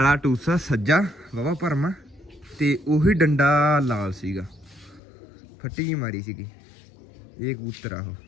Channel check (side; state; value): right; drops out; at 5.0 s